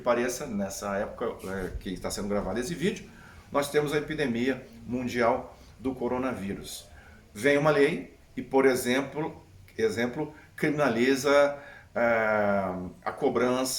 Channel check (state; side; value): identical; both; correlation 1.00